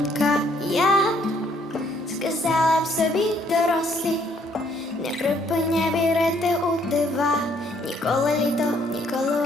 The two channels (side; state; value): both; normal; correlation 0.66